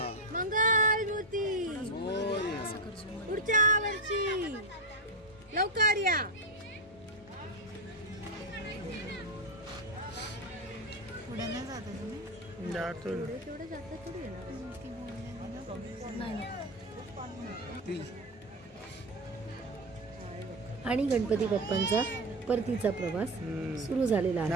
मंगलमूर्ती पुढच्या वर्षी लवकर या. पुढे नाही जाता तुम्ही. जातो ना. तेवढं जास्त थोडी येणार. नाही. आणि गणपती बाप्पांचा परतीचा प्रवास सुरू झालेला आहे.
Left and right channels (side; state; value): both; normal; correlation 0.12